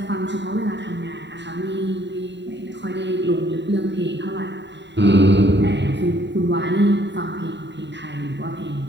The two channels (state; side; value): late; left; 0.52 ms